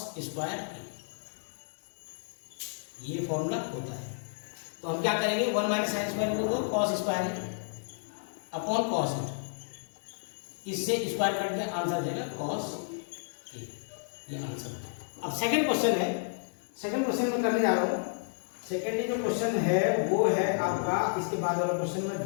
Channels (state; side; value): silent; right; digital silence